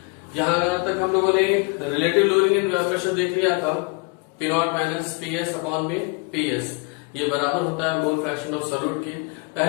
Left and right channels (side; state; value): right; quieter; 30.0 dB